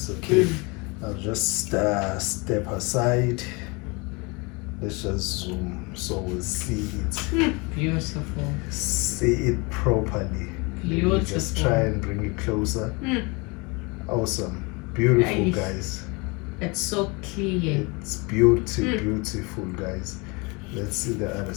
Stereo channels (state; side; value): quieter; right; 28.3 dB